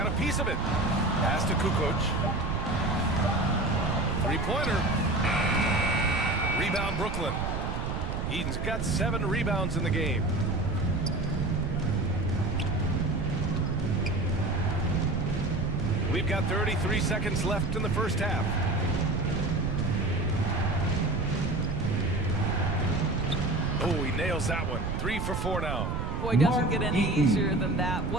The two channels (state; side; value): noise; right; rumble, 2 dB below the sound